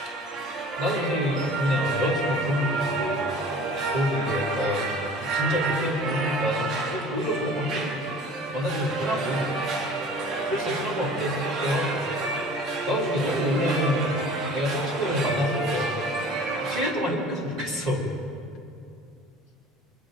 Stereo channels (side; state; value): both; normal; correlation 0.45